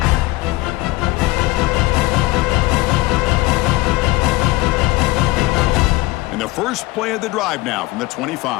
And the first play of the drive now from the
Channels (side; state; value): right; quieter; 20.1 dB